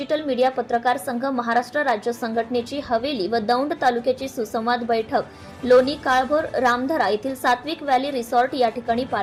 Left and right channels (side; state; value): both; identical; correlation 1.00